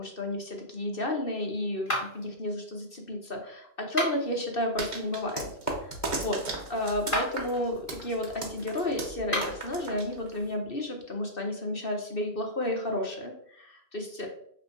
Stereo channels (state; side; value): late; right; 2.1 ms